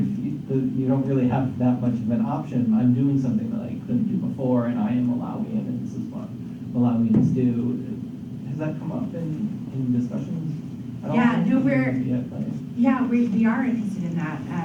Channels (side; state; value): both; identical; correlation 1.00